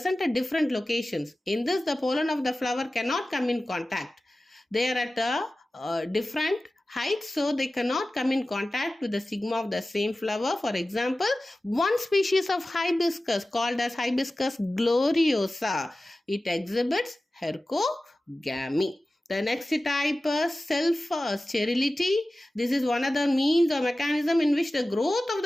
at different locations. In this, the pollen of the flower cannot come in contact. They are at a different height, so they cannot come in contact with the stigma of the same flower. For example, one species of hibiscus called as Hibiscus gloriosa, it exhibits hercogamy. The next type is self-sterility. This is one of the means or mechanism in which the growth of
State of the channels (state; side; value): normal; both; correlation 0.96